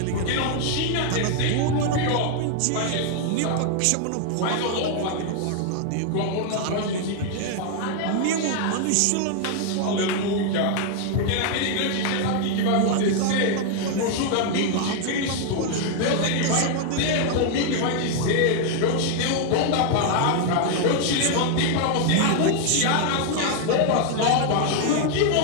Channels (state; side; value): different; both; correlation 0.00